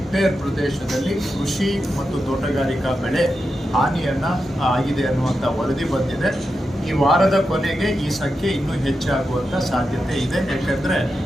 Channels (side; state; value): both; normal; correlation 0.88